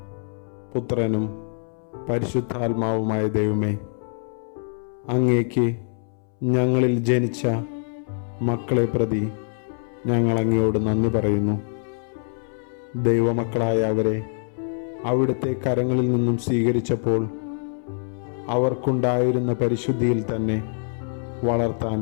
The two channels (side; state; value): right; silent; 62 dB below the other